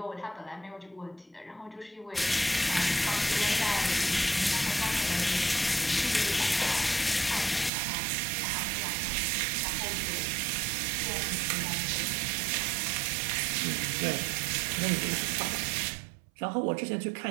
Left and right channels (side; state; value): left; drops out; at 7.7 s